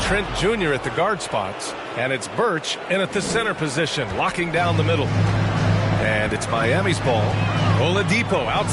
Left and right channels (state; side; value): identical; both; correlation 1.00